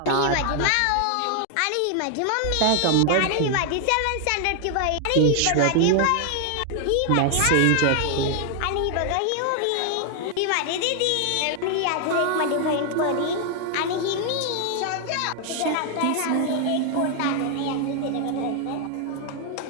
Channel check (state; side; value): different; both; correlation 0.00